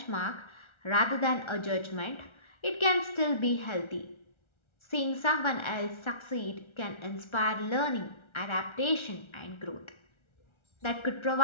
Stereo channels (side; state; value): right; late; 1.3 ms